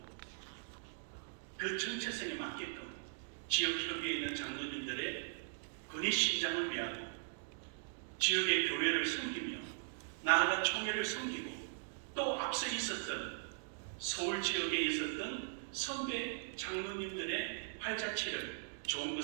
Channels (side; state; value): left; silent; digital silence